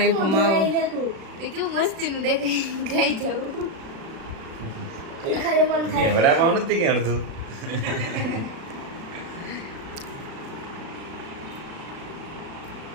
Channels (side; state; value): left; late; 36 ms